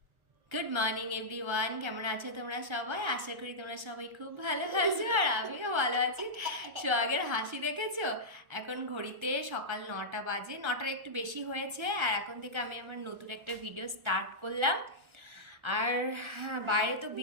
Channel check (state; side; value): late; left; 1.3 ms